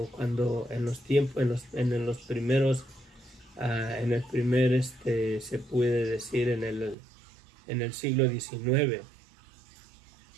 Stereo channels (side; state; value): left; drops out; at 7.0 s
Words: cuando en los tiempos, en los primeros, en el primer, se puede decir, en el siglo XIX.